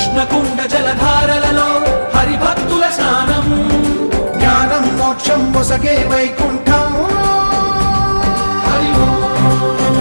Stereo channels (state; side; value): inverted; both; correlation -1.00